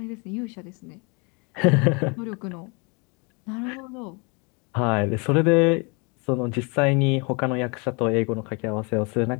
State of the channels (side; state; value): right; quieter; 31.9 dB